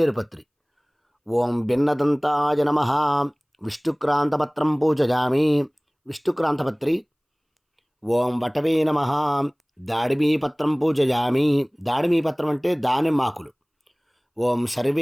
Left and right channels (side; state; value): both; identical; correlation 1.00